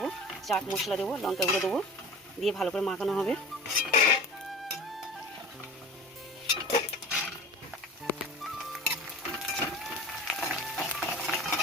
চাট মশলা দেবো, লঙ্কা গুঁড়ো দেবো, দিয়ে ভালো করে মাখানো হবে।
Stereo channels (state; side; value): normal; both; correlation 0.37